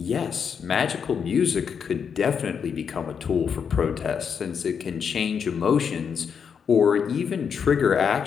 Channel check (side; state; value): right; quieter; 6.9 dB